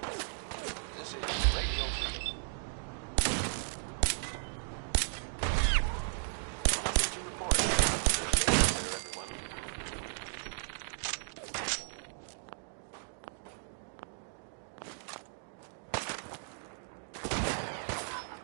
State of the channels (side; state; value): left; silent; digital silence